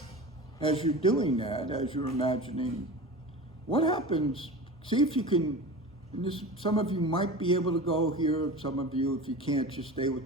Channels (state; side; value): normal; both; correlation 0.32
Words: as you're doing that, as you're imagining, what happens, see if you can, and this, some of you might be able to go here, some of you, if you can't, just stay